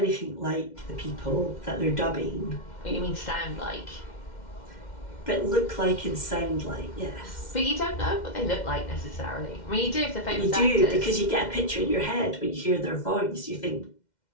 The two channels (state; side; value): late; right; 2.1 ms